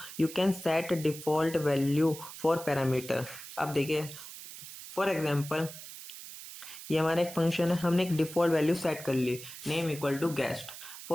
you can set default value for parameter. अब देखिए फॉर एग्जांपल ये हमारा एक फंक्शन है, हमने एक डिफॉल्ट वैल्यू सेट कर ली, name equal to guest.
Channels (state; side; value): noise; right; hiss, 13 dB below the sound